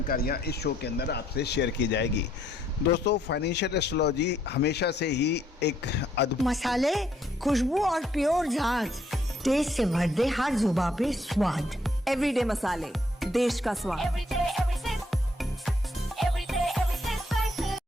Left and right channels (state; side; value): normal; both; correlation 0.69